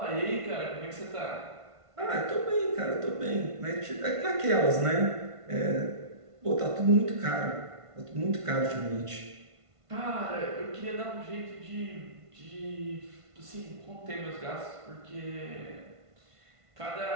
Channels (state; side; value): late; left; 1.5 ms